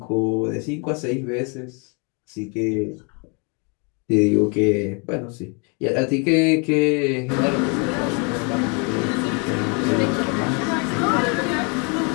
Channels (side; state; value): right; quieter; 33.9 dB